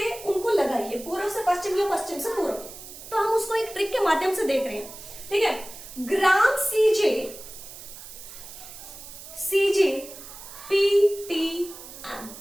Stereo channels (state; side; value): noise; right; hiss, 14 dB below the sound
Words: उनको लगाइए, पूर्व से पश्चिम या पश्चिम से पूर्व। तो हम उसको एक ट्रिक के माध्यम से देख रहे हैं, ठीक है। ग्राम सीजे PTM,